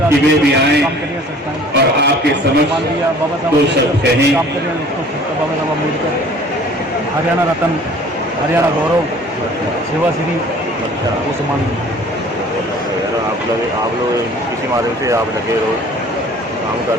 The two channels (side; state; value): both; normal; correlation 0.50